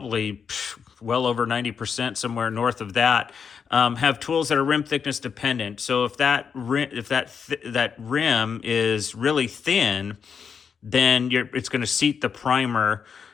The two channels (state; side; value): quieter; right; 6.6 dB